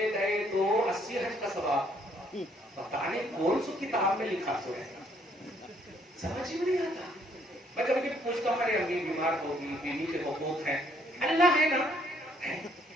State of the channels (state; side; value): normal; both; correlation 0.67